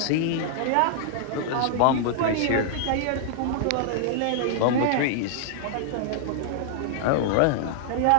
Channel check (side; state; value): both; different; correlation -0.01